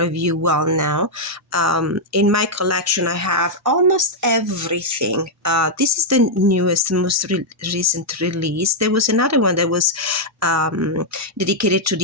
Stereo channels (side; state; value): both; normal; correlation -0.04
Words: you well know. In my collection, I have almost everything. This is the newest, most recent release. There was another one that was dedicated to